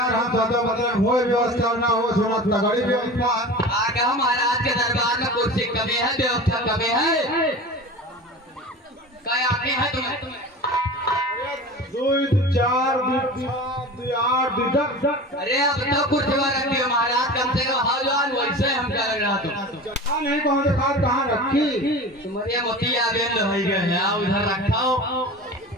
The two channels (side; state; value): both; normal; correlation 0.34